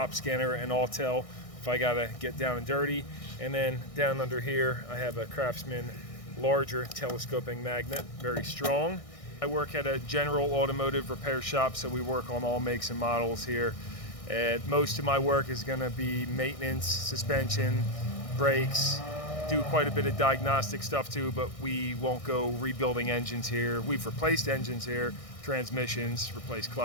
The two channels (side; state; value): right; late; 1.6 ms